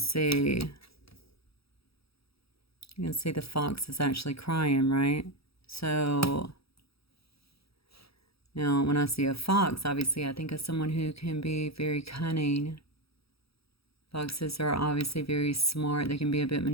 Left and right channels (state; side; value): late; right; 0.77 ms